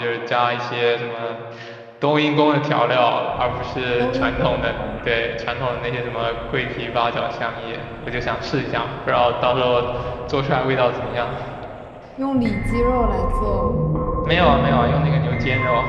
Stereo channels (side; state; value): both; identical; correlation 1.00